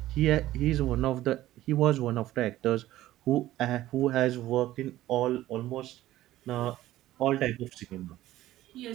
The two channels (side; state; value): left; quieter; 14.9 dB